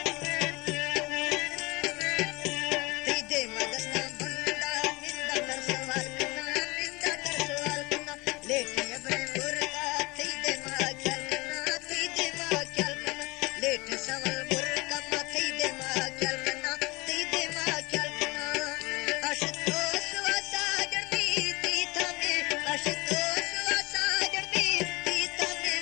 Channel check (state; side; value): quieter; right; 24.1 dB